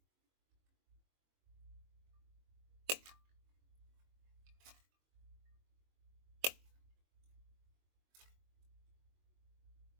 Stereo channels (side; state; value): left; late; 22 ms